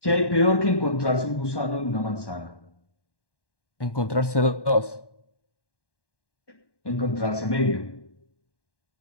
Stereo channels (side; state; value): right; late; 1.1 ms